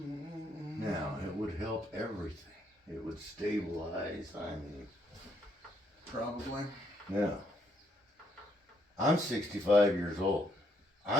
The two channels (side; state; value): both; normal; correlation 0.72